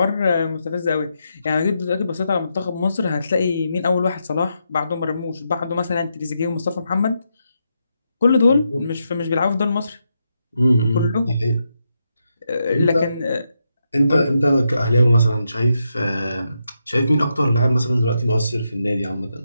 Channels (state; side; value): inverted; both; correlation -0.83